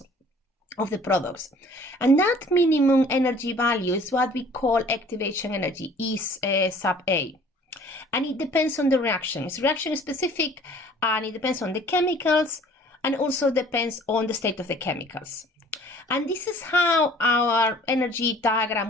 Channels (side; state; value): both; normal; correlation 0.52